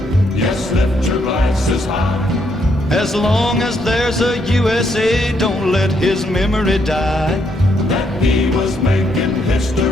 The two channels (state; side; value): normal; both; correlation 0.74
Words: Yes, lift your glasses high. As long as there's a USA, don't let his memory die. That he was making